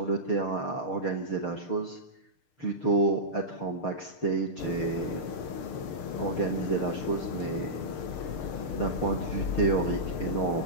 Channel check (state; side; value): late; right; 6.6 ms